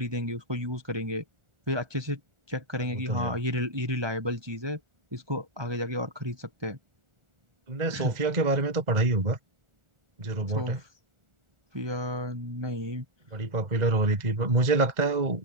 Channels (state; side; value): late; left; 1.4 ms